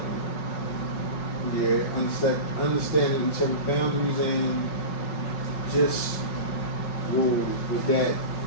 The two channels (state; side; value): late; right; 5.4 ms